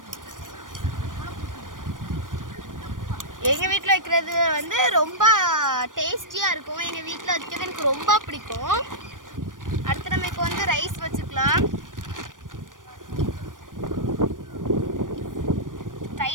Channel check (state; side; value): late; left; 0.88 ms